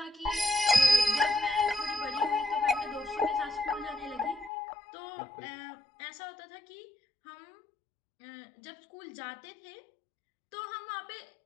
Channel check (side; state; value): right; drops out; at 4.5 s